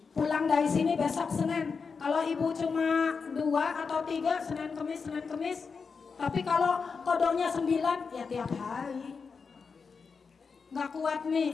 Pulang dari sini besok Senin. Kalau Ibu cuma 2 atau 3, Senin Kemis. Tapi kalau kodoknya 9, ya tiap hari. Gak kuat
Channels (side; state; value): right; quieter; 5.2 dB